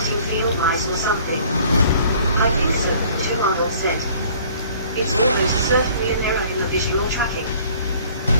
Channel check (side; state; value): both; inverted; correlation -0.54